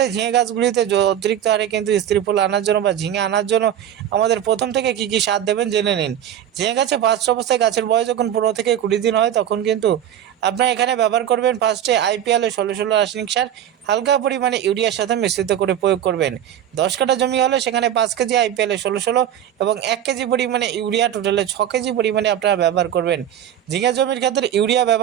ঝিঙে গাছগুলিতে অতিরিক্ত হারে কিন্তু স্ত্রী ফুল আনার জন্য বা ঝিঙে আনার জন্য আমাদের প্রথম থেকে কী কী সার দেবেন জেনে নিন। ঝিঙে গাছে ফার্স্ট অবস্থায় গাছের বয়স যখন 15 থেকে 20 দিন হয় তখন কিন্তু আপনার এখানে ব্যবহার করবেন ফার্স্টে IPL 16-16 রাসায়নিক সার হালকা পরিমাণে ইউরিয়ার সাথে মিশ্রিত করে প্রয়োগ করবেন। 10 কাঠা জমি হলে সেখানে 5 কেজি IPL 16-16 এবং 1 কেজি পরিমাণে ইউরিয়া, টোটালে 6 কেজি পরিমাণে আপনারা ব্যবহার করবেন। ঝিঙে জমির ক্ষেত্রে ইউরিয়া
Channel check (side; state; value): left; quieter; 10.5 dB